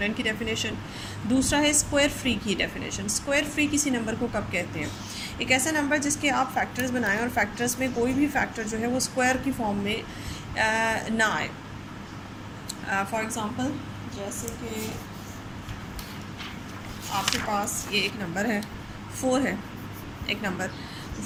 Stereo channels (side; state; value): both; identical; correlation 1.00